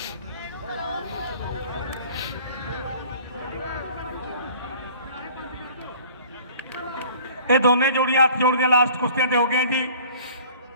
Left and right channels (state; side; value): inverted; both; correlation -0.49